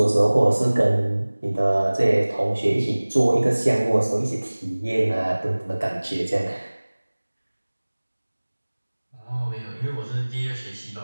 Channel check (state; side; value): inverted; both; correlation -1.00